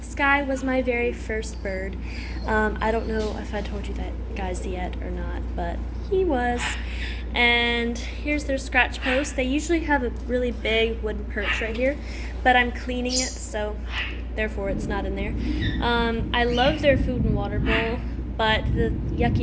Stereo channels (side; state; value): both; identical; correlation 1.00